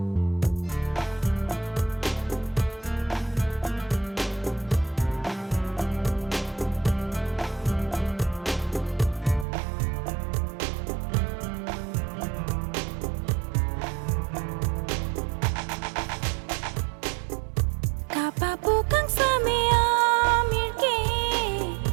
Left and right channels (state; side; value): drops out; left; at 9.5 s